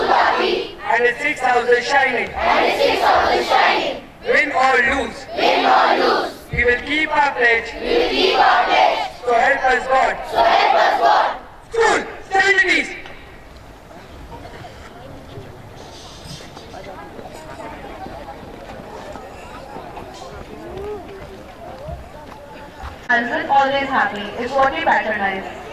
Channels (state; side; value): identical; both; correlation 1.00